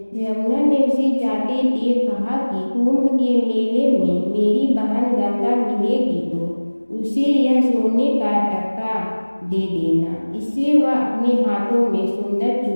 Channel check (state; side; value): inverted; both; correlation -1.00